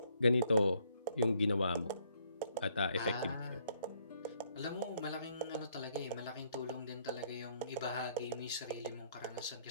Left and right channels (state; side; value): inverted; both; correlation -0.69